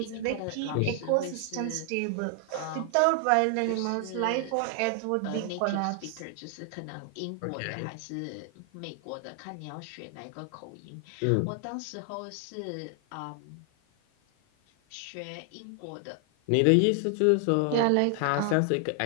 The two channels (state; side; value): different; both; correlation 0.00